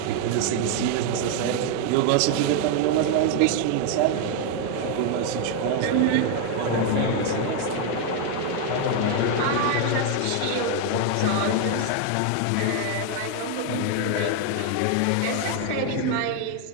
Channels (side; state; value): both; different; correlation 0.01